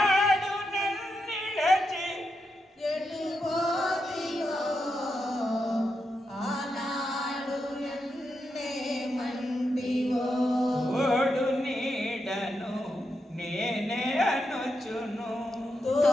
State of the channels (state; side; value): normal; both; correlation 0.85